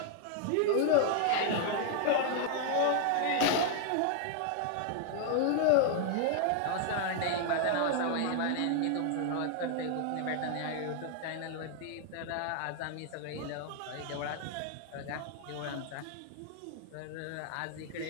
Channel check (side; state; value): both; different; correlation 0.00